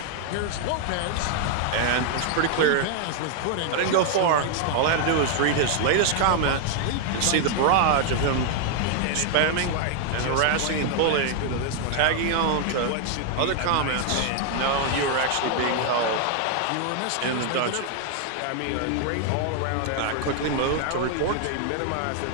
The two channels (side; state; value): both; different; correlation 0.00